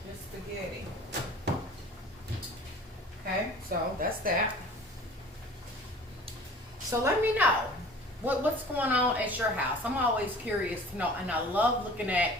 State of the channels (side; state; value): both; normal; correlation 0.45